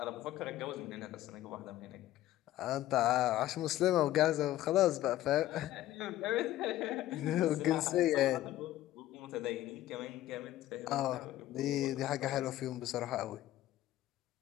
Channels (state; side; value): quieter; right; 14.3 dB